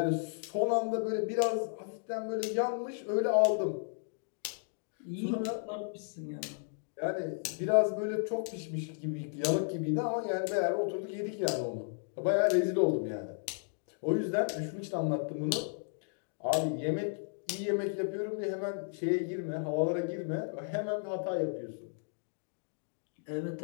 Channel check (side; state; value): right; silent; digital silence